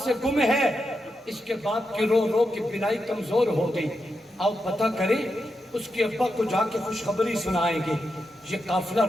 سے گم ہے اس کے باپ کی رو رو کی بینائی کمزور ہو گئی آؤ پتہ کریں اس کے ابا کو جا کے خوشخبری سنائیں گے یہ قافلہ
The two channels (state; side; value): normal; both; correlation 0.86